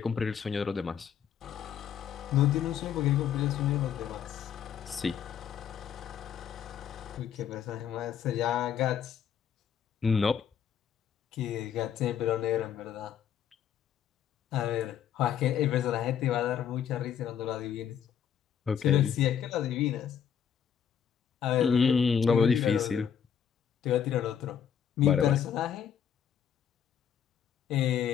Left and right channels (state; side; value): quieter; right; 8.5 dB